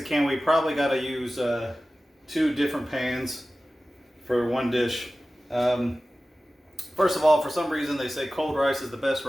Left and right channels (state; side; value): normal; both; correlation 0.96